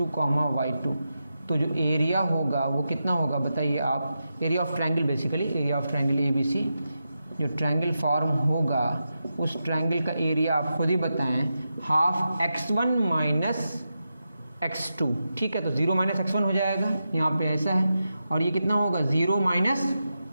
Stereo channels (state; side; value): inverted; both; correlation -0.89